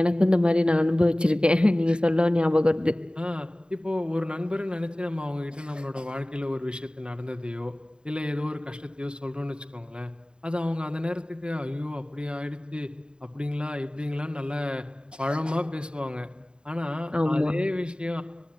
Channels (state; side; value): late; left; 0.050 ms